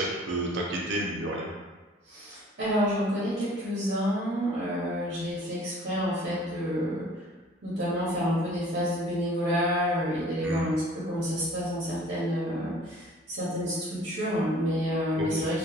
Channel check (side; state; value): both; normal; correlation 0.51